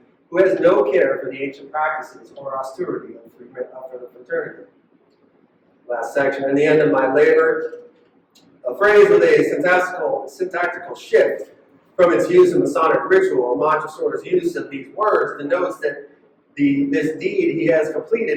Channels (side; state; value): both; identical; correlation 1.00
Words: who has no care for the ancient practices or austerity of the fraternity. Last section, in the end of my labor, a phrase with a syntactical shift from its use in Masonic ritual. Montresor's use of these words denotes that this deed he has